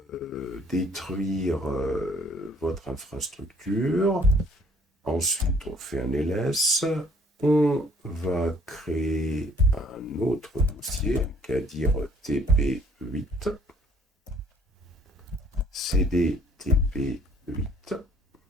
détruire votre infrastructure. Ensuite, on fait un ls. On va créer un autre dossier, qu'à dire TP8, CD TP8.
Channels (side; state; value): both; normal; correlation 0.60